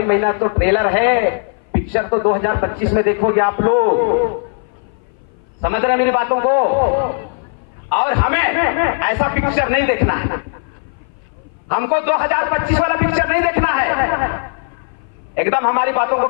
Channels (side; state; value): right; silent; 58 dB below the other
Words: महीना तो ट्रेलर है, पिक्चर तो 2025 में देखोगे आप लोग। समझ रहे हैं मेरी बातों को? और हमें ऐसा पिक्चर नहीं देखना है, हमको 2025 वाला पिक्चर नहीं देखना है। एकदम हमारी बातों को